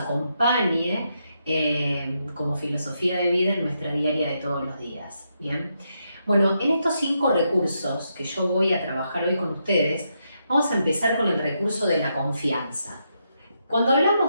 como filosofía de vida en nuestra diaria de todos los días. Bien. Bueno, en estos 5 recursos que yo voy a trabajar hoy con ustedes, vamos a empezar con el recurso de la confianza. Cuando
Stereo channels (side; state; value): both; inverted; correlation -0.81